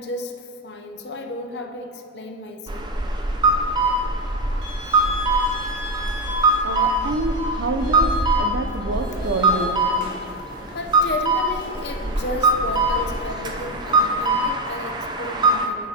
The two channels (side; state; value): both; normal; correlation 0.10